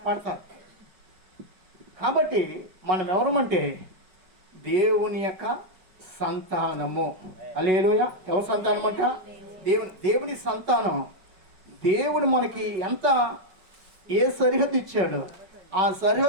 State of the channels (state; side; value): late; left; 4.8 ms